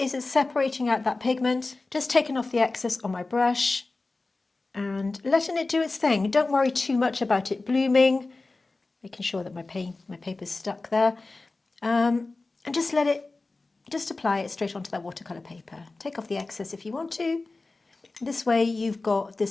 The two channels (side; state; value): right; quieter; 3.4 dB